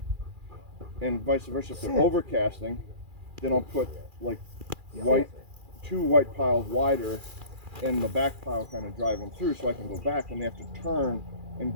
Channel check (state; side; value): late; left; 2.4 ms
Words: and vice versa. If they're overcasting, then I'll put like two white piles wider, and the back pile kind of drive them through, so I can go back when they have to turn and